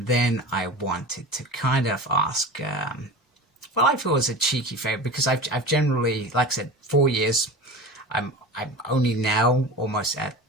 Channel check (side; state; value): both; normal; correlation 0.32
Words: then I wanted to kind of ask, well, I feel it was a cheeky favor, because I've generally, like I said, 4 years. I'm only now almost at